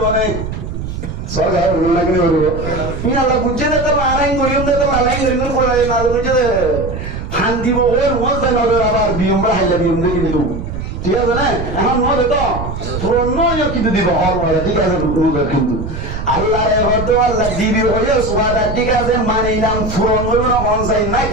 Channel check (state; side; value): noise; right; rumble, 6 dB below the sound